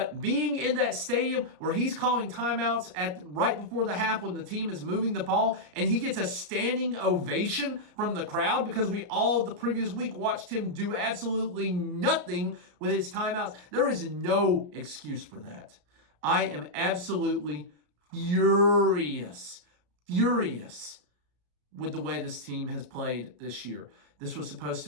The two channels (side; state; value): left; late; 33 ms